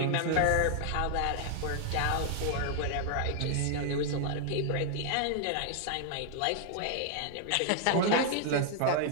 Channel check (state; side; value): different; both; correlation 0.00